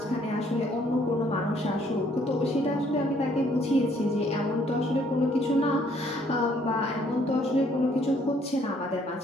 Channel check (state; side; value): normal; both; correlation 0.64